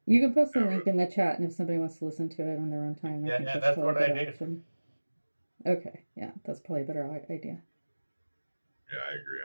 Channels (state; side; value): inverted; both; correlation -1.00